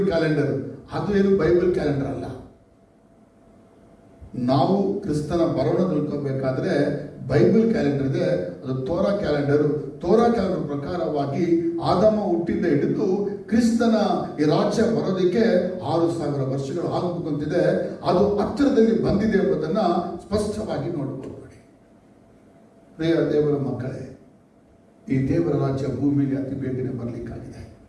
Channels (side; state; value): both; identical; correlation 1.00